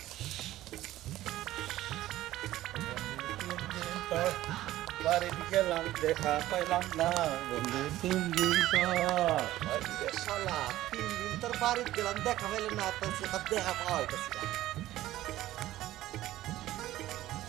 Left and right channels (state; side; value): quieter; left; 15.0 dB